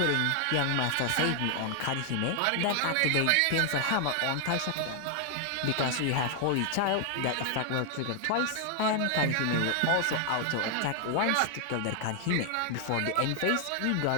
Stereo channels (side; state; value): both; different; correlation 0.00